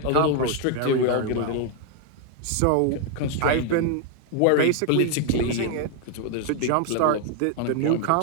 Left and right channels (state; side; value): different; both; correlation 0.01